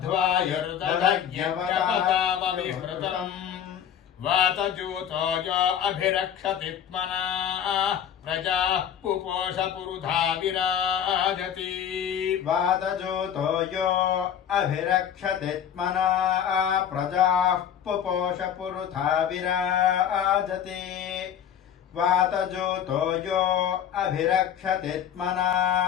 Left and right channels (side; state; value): right; quieter; 9.1 dB